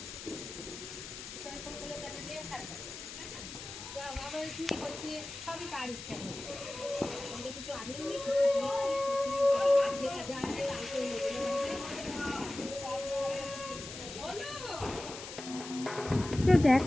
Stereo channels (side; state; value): left; noise; hiss, 11 dB below the sound